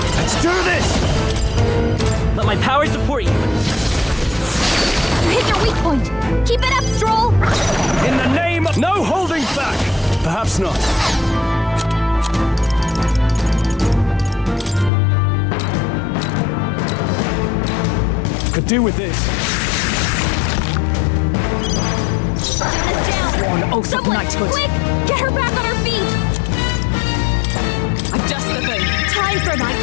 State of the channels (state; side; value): drops out; right; at 14.9 s